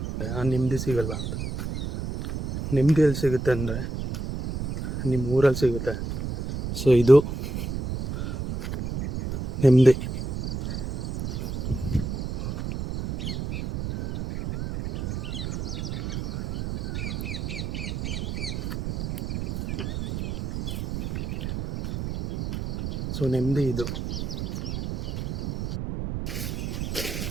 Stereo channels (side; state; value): right; noise; rumble, 4 dB below the sound